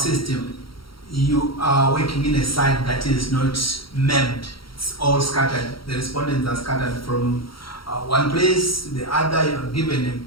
you are working in a site that is not mapped. It's all scattered. The respondents are scattered from one place to the other. You are given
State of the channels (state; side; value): late; right; 0.74 ms